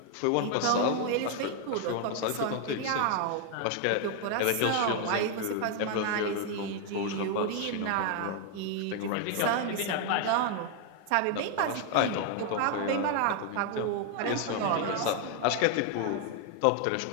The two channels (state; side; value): different; both; correlation 0.00